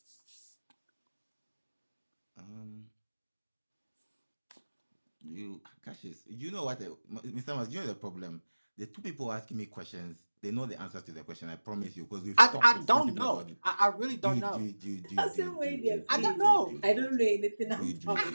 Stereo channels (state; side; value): inverted; both; correlation -1.00